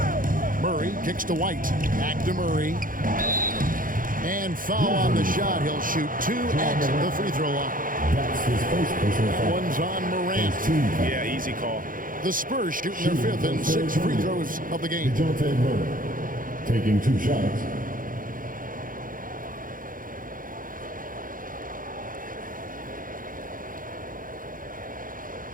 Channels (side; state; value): left; late; 0.40 ms